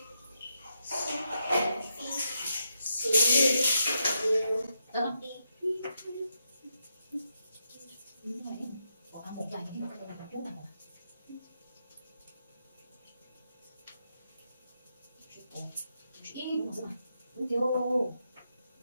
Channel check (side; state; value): both; inverted; correlation -0.82